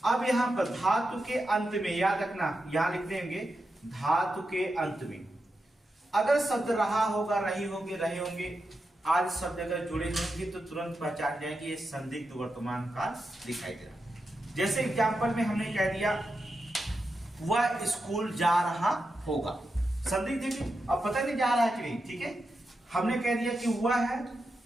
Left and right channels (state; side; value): normal; both; correlation 0.88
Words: अब यहां पर धातु के अंत में याद रखना, यहां लिख देंगे धातु के अंत में अगर शब्द रहा होगा, रही होंगे, रहे होंगे, आदि शब्द अगर जुड़े होंगे तो तुरंत पहचान जाएंगे ये संदिग्ध वर्तमान काल दिखाई दे रहा। जैसे एग्जाम्पल में हमने कह दिया वह स्कूल जा रहा होगा, संदिग्ध देखिए अब पता नहीं जा रहा है कि नहीं। ठीक है, हमने कह दिया कि